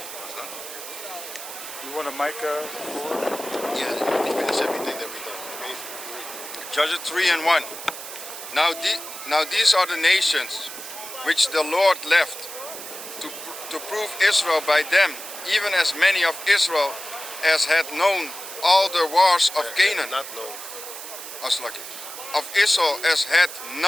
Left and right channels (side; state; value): right; noise; hiss, 10 dB below the sound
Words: You want a mic for? Yeah, you finish everything that we've done. Judges 3 and 1. Now these are the nations which the Lord left to prove Israel by them, even as many of Israel as had known all the wars of Canaan. Not known. As lucky. of Israel as had